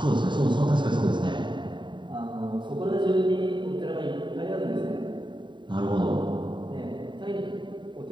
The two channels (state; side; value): late; left; 0.23 ms